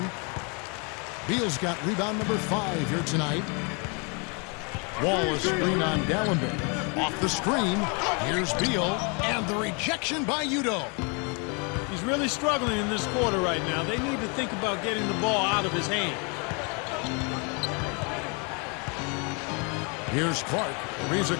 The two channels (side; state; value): right; quieter; 33.9 dB